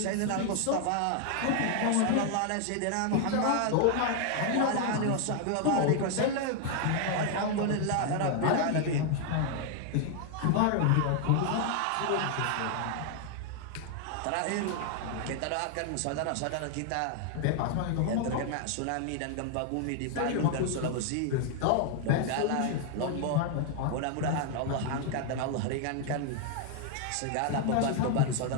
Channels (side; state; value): both; different; correlation 0.00